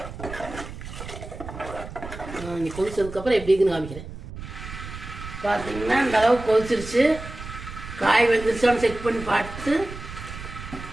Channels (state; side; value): noise; right; rumble, 11 dB below the sound